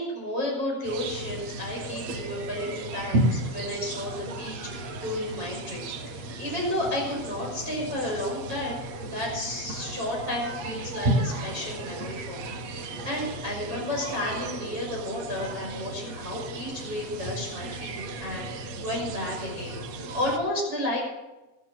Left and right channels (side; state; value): left; late; 8.3 ms